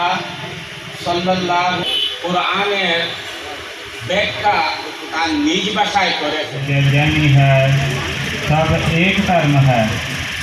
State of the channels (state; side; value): identical; both; correlation 1.00